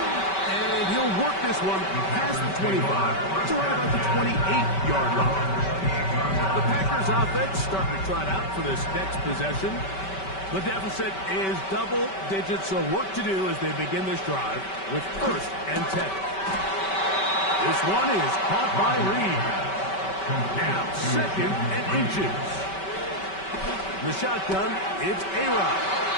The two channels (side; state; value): right; late; 5.2 ms